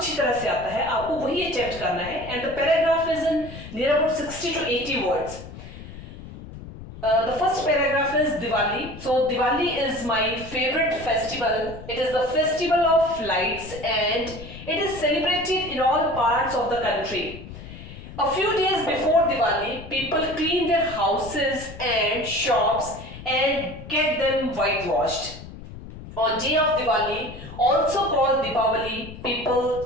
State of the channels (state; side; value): noise; left; rumble, 14 dB below the sound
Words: तरह से आता है, आपको वही अटेम्प्ट करना है. And the paragraph is in near about 60 to 80 words. The first paragraph is Diwali. So Diwali is my favorite festival. It is the festival of lights and it is celebrated in all parts of the country. A few days before Diwali, people clean their houses and shops and get them whitewashed. On day of Diwali, also called Deepavali,